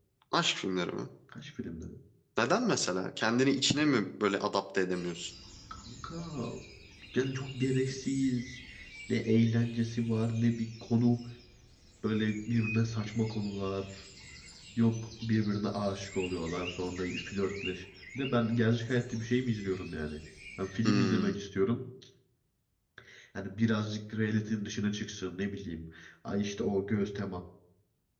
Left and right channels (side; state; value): both; identical; correlation 1.00